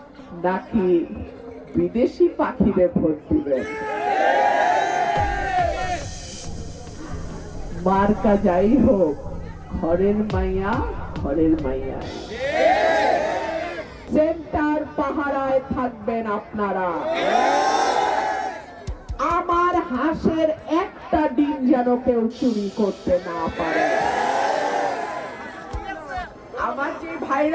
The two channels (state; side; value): identical; both; correlation 1.00